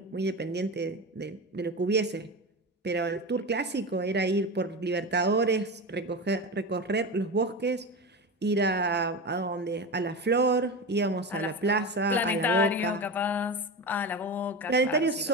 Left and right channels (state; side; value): normal; both; correlation 0.23